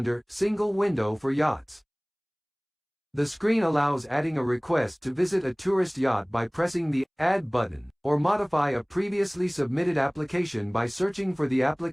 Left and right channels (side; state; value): both; identical; correlation 1.00